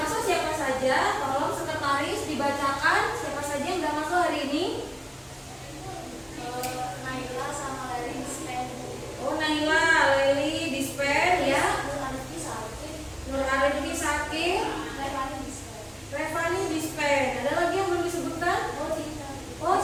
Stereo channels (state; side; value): identical; both; correlation 1.00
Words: siapa saja? Tolong sekretaris dibacakan siapa saja yang sudah masuk hari ini. Naila sama Leli Dispen. Oh, Naila, Leli Dispen ya. Nur Arifki Sakir, Revani Dispen. Revani Dispen. Ada lagi yang belum disebutkan? Oh, Dispen